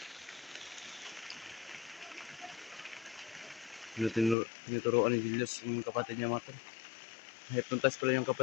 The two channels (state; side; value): drops out; right; at 4.4 s